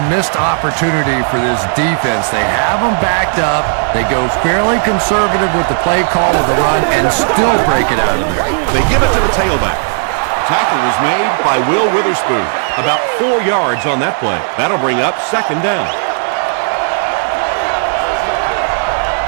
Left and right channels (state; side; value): silent; left; 71 dB below the other